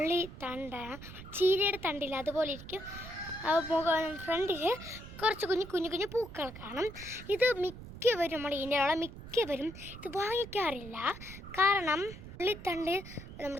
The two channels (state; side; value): noise; right; rumble, 14 dB below the sound